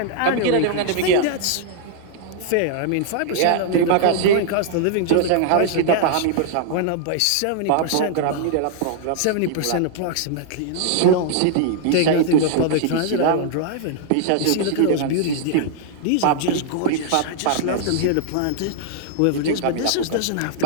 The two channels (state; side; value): different; both; correlation -0.01